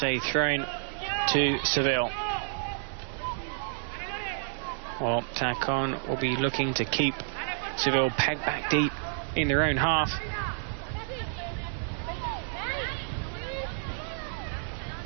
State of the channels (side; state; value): left; silent; digital silence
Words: a throw-in to Seville. Well, Tacon will be looking to keep Seville pegged back deep in their own half.